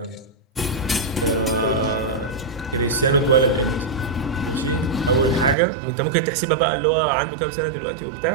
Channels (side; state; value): left; drops out; at 5.6 s